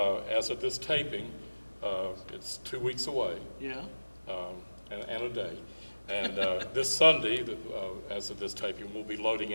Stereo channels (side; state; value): both; inverted; correlation -1.00